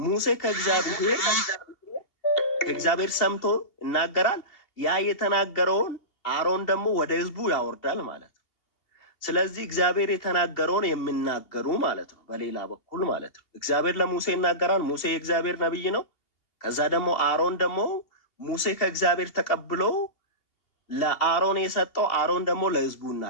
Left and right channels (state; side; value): late; right; 2.8 ms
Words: ሙሴ ከእግዚአብሔር ሰምቶ ይናገራል። ያ የተናገረውን አሮን ደግሞ ወደ ህዝቡ ያወርዳል ማለት ነው። ስለዚህ እግዚአብሔር የተናገረውን የሚናገሩ ማለት ነው። በሌላ በኩል ማለት ነው እግዚአብሔር ለሙሴ ይናገራል። ሙሴ የእግዚአብሔር ነቢይ ነው። ከዛ ደግሞ አሮን ደግሞ ሙሴ ከእግዚአብሔር ተቀብሎ ለአሮን የሰጠው አሮን ደግሞ ለህዝቡ